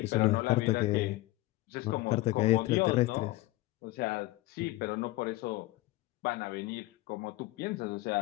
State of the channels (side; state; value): right; quieter; 18.8 dB